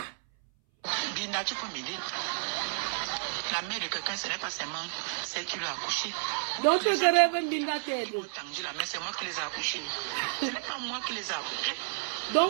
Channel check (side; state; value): left; silent; 57 dB below the other